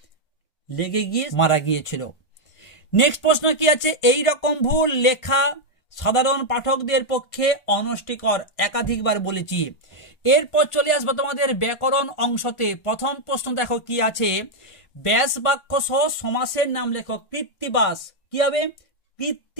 লেগে গিয়ে মারা গিয়েছিল। নেক্সট প্রশ্ন কি আছে? এই রকম ভুল লেখা সাধারণ পাঠকদের পক্ষে অনষ্টিকর, একাধিকবার বলেছি। এরপর চলে আসবো তোমাদের ব্যাকরণ অংশতে। প্রথম প্রশ্ন দেখো কি আছে? ব্যাস বাক্য সহ সমাসের নাম লেখো। কৃত্তিবাস, কি হবে?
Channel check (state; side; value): late; right; 1.5 ms